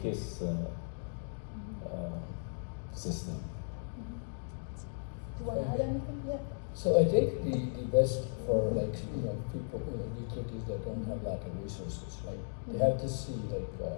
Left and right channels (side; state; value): right; silent; digital silence